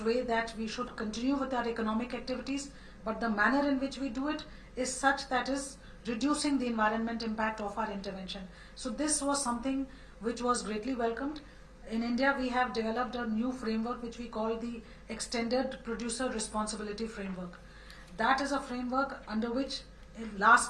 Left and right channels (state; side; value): identical; both; correlation 1.00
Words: way that we should continue with our economic activities, but the manner in which we do it is such that is reducing the environment impact of our intervention. So this was something which was greatly welcomed. In India, we have developed a new framework which we call the Extended Producer Responsibility Framework. That is a framework under which